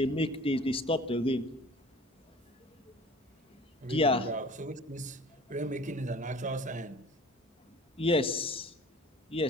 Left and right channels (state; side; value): normal; both; correlation 0.46